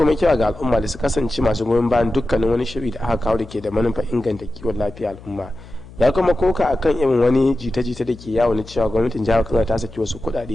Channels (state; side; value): noise; left; hum, 19 dB below the sound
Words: kira ga al'umma da su kasance masu goyon bayan dukkanin wani shiri da aka kawo da ke da manufar inganta kiwon lafiya al'umma. Ya kuma koka akan irin wani jita-jita da ke yawo na cewa gwamnatin jihar Kano ta saki wasu